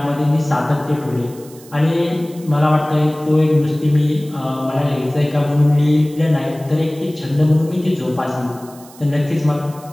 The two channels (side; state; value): right; noise; hiss, 22 dB below the sound